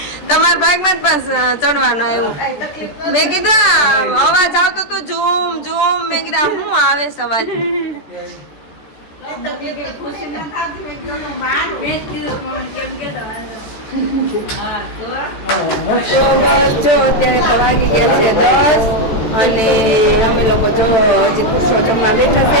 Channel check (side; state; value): right; late; 14 ms